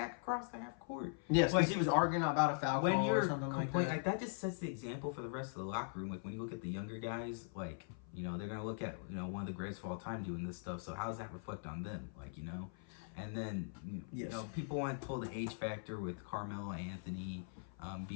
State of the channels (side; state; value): right; silent; 50 dB below the other